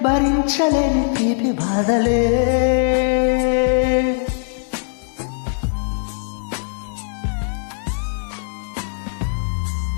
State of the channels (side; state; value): right; silent; digital silence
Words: భరించలేని తీపి బాధలే.